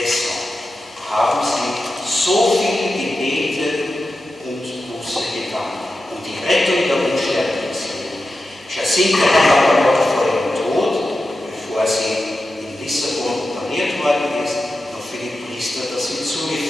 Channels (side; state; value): both; normal; correlation 0.91